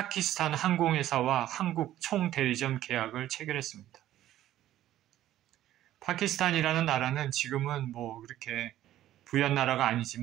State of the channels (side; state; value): left; quieter; 13.2 dB